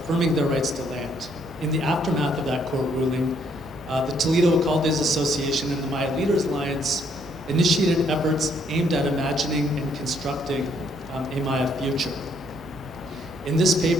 their rights to land. In the aftermath of that court ruling, the Toledo Alcaldes Association and the Maya Leaders Alliance initiated efforts aimed at imagining and constructing a Maya future. In this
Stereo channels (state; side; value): normal; both; correlation 0.69